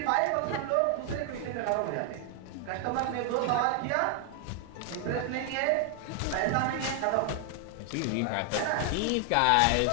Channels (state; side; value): different; both; correlation 0.00